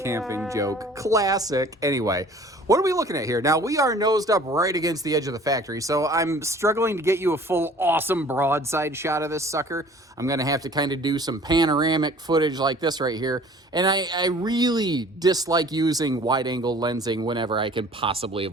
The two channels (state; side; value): normal; both; correlation 0.50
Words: camping joke. Classic. Anyway, what are we looking at here? Now, we are nosed up right against the edge of the factory, so I'm struggling to get you a full awesome broadside shot of this sucker. I'm going to have to kind of do some panoramic footage like this right here, and I really dislike using wide-angle lensing whenever I can possibly